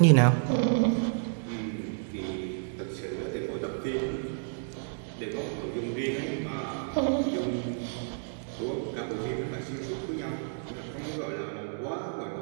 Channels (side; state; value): left; silent; digital silence